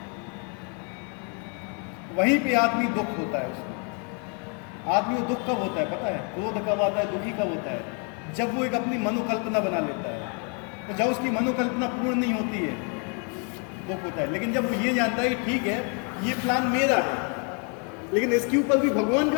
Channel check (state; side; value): quieter; right; 38.1 dB